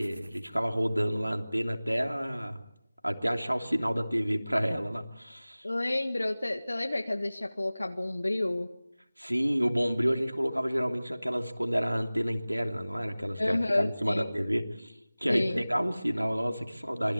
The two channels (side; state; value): both; inverted; correlation -0.98